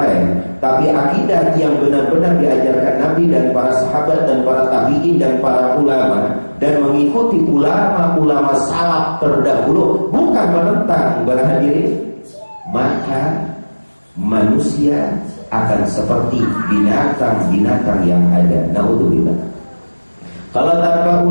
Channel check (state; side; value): inverted; both; correlation -1.00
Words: tapi akidah yang benar-benar diajarkan Nabi dan para sahabat dan para tabi'in dan para ulama, dan mengikuti ulama-ulama salaf terdahulu, bukan menentang. Berhadirin, maka manusia akan seperti binatang-binatang yang ada. Naudzubillah. Kalau tanpa